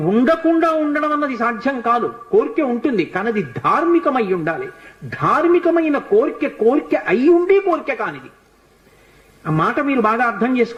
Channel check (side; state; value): both; identical; correlation 1.00